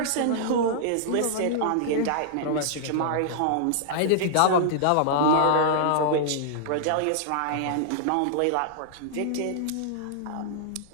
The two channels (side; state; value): both; different; correlation -0.01